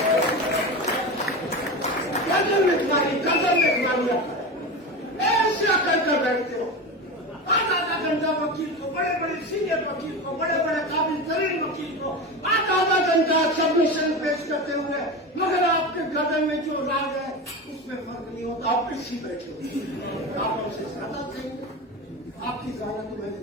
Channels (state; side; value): normal; both; correlation 0.24